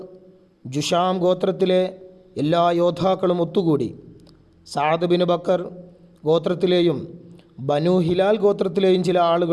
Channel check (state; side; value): identical; both; correlation 1.00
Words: ജുഷാം ഗോത്രത്തിലെ എല്ലാ യോദ്ധാക്കളും ഒത്തുകൂടി. സഅദ് ബിൻ ബക്കർ ഗോത്രത്തിലെയും ബനു ഹിലാൽ ഗോത്രത്തിലെയും ചില